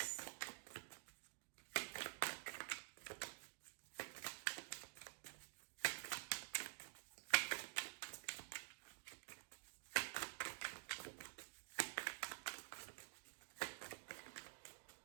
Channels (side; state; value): left; silent; digital silence